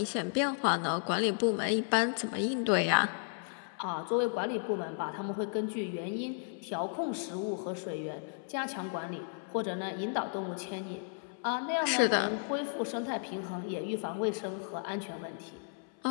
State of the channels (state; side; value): silent; right; 55 dB below the other